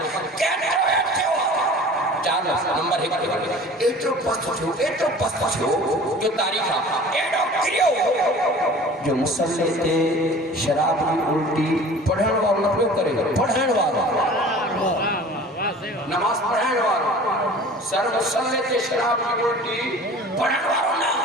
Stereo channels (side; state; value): both; normal; correlation 0.43